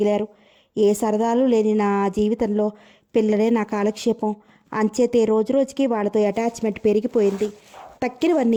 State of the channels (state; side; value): identical; both; correlation 1.00